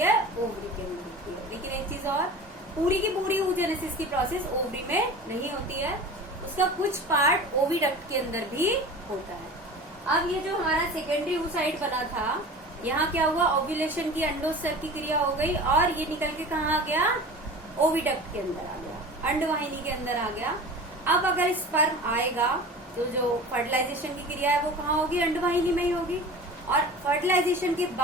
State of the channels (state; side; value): normal; both; correlation 0.36